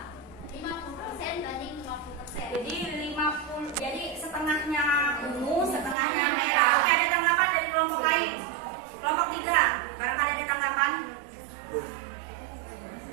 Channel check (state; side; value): drops out; left; at 6.0 s